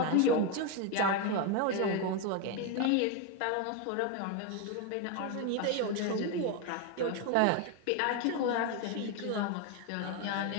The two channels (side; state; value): both; different; correlation 0.02